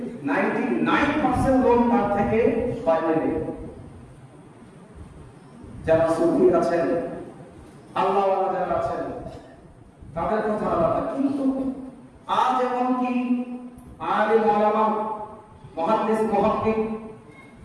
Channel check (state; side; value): identical; both; correlation 1.00